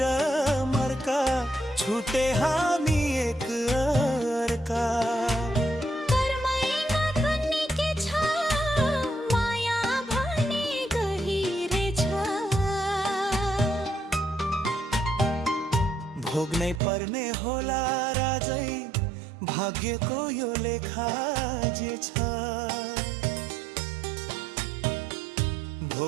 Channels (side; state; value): left; drops out; at 16.8 s